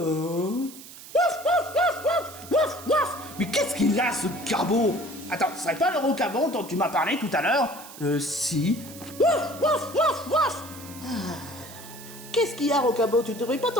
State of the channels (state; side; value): noise; right; hiss, 16 dB below the sound